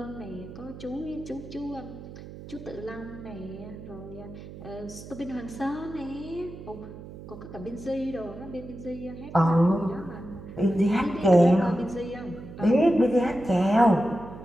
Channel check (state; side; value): noise; right; hum, 14 dB below the sound